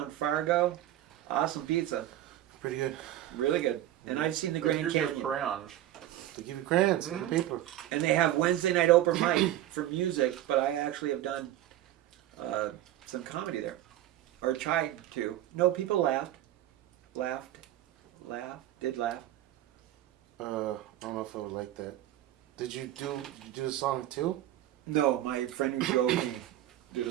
Fargo, awesome pizza, Pretty good. really good. And I've seen the But Grand here's your Canyon. crayons. They give you crayons and paper. And they have Wednesday night open mic for music, but I actually have done some comedy there, or tried to. No, people laughed. Did laugh. I don't know if I would like that. Did you do the song too? No, my friend who drove me did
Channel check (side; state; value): left; quieter; 13.3 dB